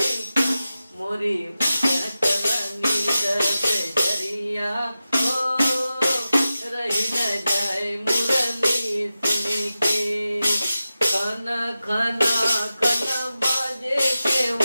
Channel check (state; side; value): inverted; both; correlation -0.93